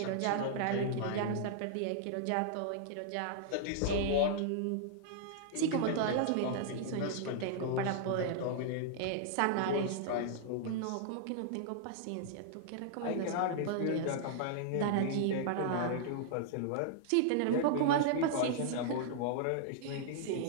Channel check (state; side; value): different; both; correlation -0.01